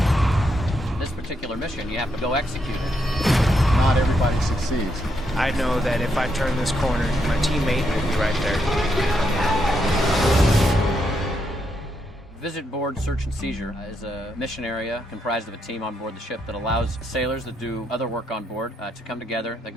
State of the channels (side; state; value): both; normal; correlation 0.79